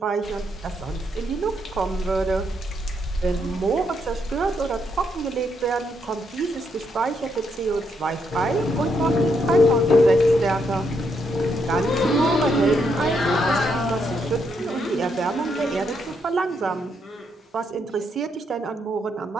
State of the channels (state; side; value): normal; both; correlation 0.77